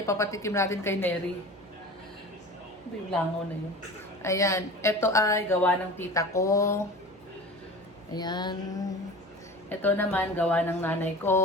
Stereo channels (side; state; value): both; normal; correlation 0.36